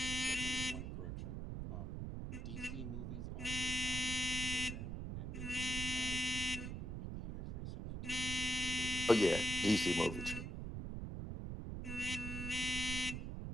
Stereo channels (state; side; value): noise; right; rumble, 5 dB below the sound